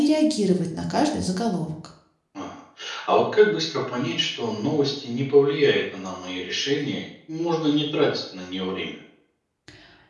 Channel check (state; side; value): identical; both; correlation 1.00